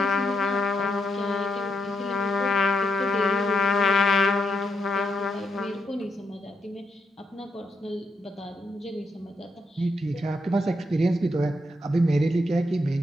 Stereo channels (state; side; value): normal; both; correlation 0.81